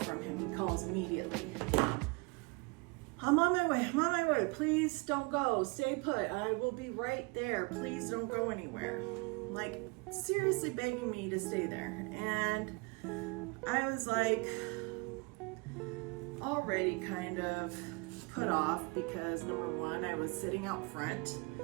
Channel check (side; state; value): left; quieter; 28.4 dB